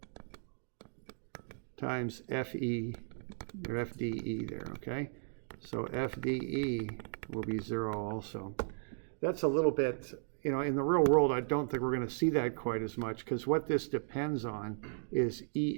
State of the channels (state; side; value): silent; left; digital silence